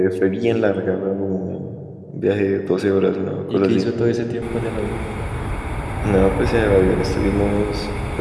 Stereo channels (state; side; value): identical; both; correlation 1.00